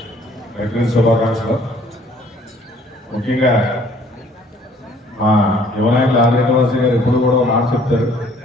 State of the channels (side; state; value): both; normal; correlation 0.59